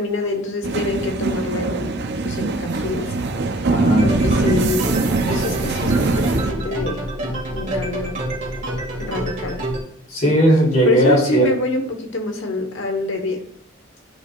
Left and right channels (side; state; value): both; normal; correlation 0.48